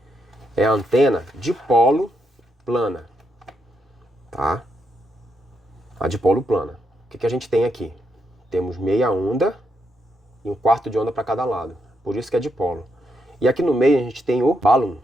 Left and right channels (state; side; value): normal; both; correlation 0.80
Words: é a antena dipolo plana, tá? A dipolo plana. O que a gente tem aqui? Temos meia onda e um quarto de onda para cada lado. Por isso que é dipolo. E aqui no meio a gente tem o balloon.